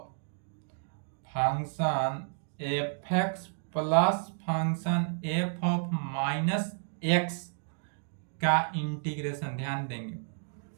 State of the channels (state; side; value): silent; left; digital silence